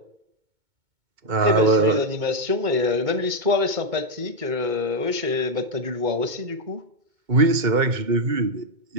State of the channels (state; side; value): late; left; 2.2 ms